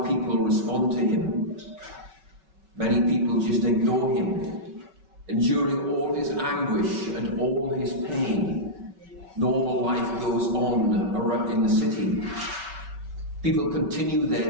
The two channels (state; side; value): late; left; 5.3 ms